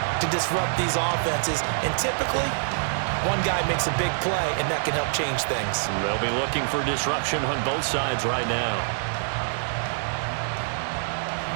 to disrupt these offenses. And typically, one guy makes a big play, and that can help change things. They'll be looking for disruption on both sides right now.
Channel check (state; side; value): silent; left; 61 dB below the other